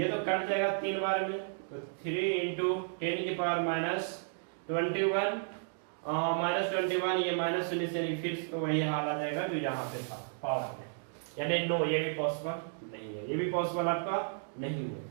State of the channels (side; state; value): left; silent; digital silence